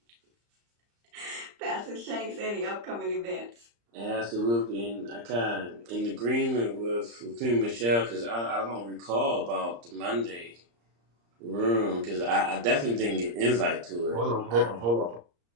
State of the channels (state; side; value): late; left; 34 ms